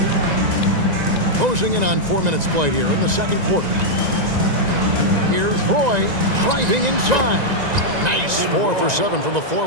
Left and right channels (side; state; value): left; late; 1.9 ms